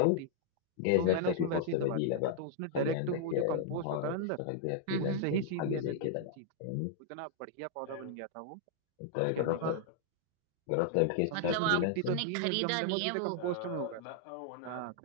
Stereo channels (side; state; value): both; different; correlation -0.01